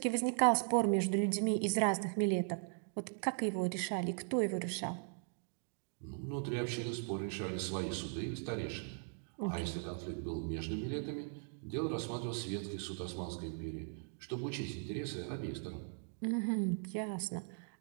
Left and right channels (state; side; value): silent; left; 52 dB below the other